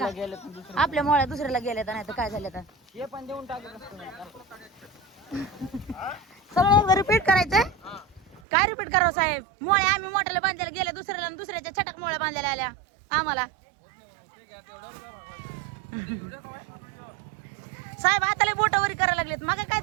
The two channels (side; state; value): left; drops out; at 8.4 s